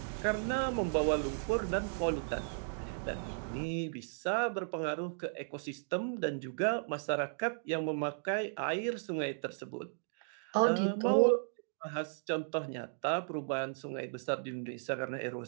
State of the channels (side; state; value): left; silent; digital silence